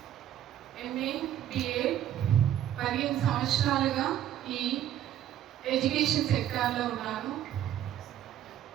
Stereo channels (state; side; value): quieter; left; 11.4 dB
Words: ఎంఏ, బిఏ 15 సంవత్సరాలుగా ఈ ఎడ్యుకేషన్ సెక్టార్లో ఉన్నాను.